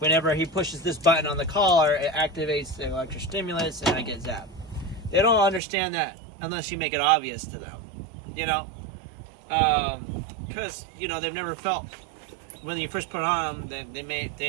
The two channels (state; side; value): drops out; left; at 5.6 s